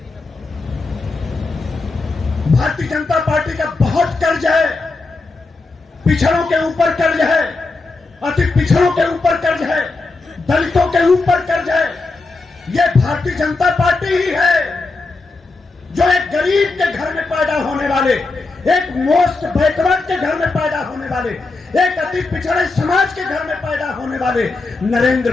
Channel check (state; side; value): quieter; right; 3.6 dB